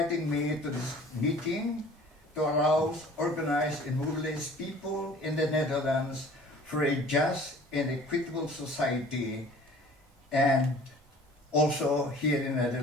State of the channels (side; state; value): both; normal; correlation 0.48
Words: me to this meeting to arouse, organize, and mobilize people in the Netherlands for a just and equitable society, and also here in the